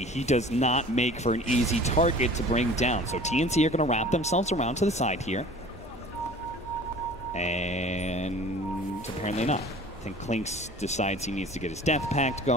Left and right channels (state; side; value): normal; both; correlation 0.45